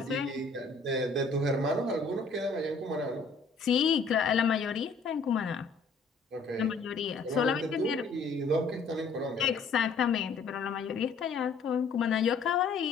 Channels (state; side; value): quieter; right; 4.1 dB